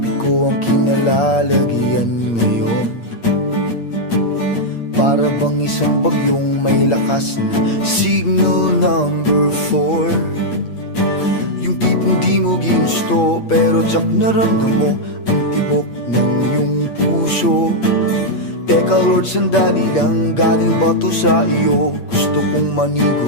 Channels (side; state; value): right; late; 8.6 ms